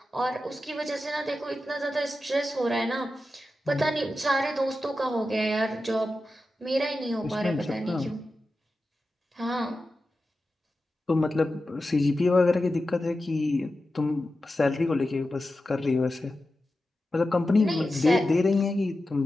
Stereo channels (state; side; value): normal; both; correlation 0.92